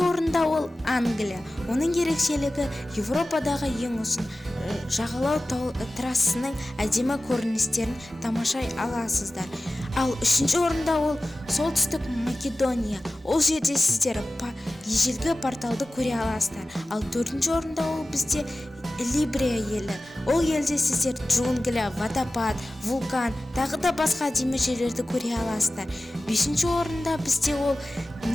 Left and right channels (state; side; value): normal; both; correlation 0.96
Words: орында ол Англия. Оның ерекшелігі Европадағы ең ұзын жағалау трассасының әдемі көріністерін тамашай аласыздар. Ал үшінші орында ол солтүстік Македония. Ол жерде сіздер ежелгі порталды көре аласыздар. Ал төртінші орында ол бізде Либрия елі. Ол елде сіздер джунгля, водопад, вулкан, тағы да басқа әдемі жерлерді көре аласыздар. Бесінші орында бізде ол